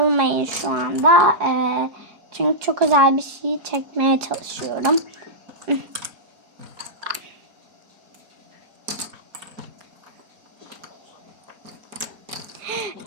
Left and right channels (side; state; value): left; late; 4.8 ms